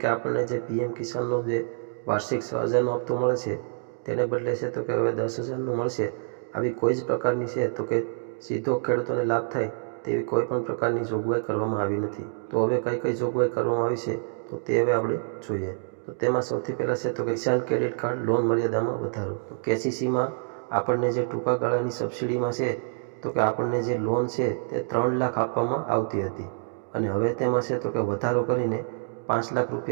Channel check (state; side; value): silent; left; digital silence